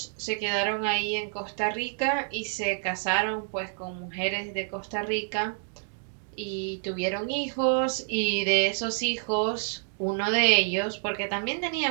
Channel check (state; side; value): silent; left; 59 dB below the other